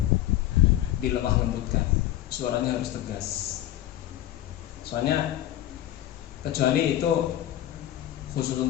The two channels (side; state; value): right; quieter; 13.3 dB